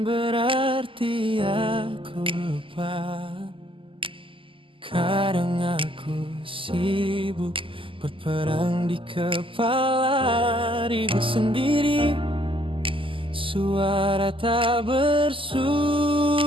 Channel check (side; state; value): left; late; 0.25 ms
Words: berarti aku lupa. Kadang aku sibuk berperang di kepala, ribut sendiri, suara tak bersuara.